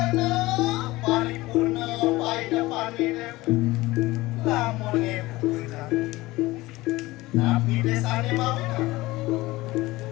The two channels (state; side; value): quieter; right; 19.5 dB